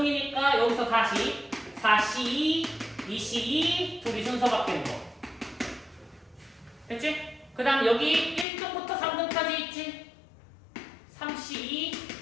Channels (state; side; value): drops out; right; at 8.5 s